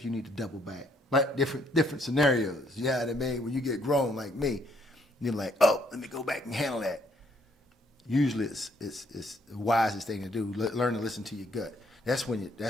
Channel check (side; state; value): both; normal; correlation 0.68